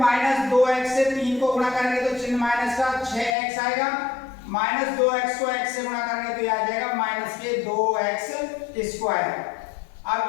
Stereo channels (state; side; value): drops out; right; at 3.4 s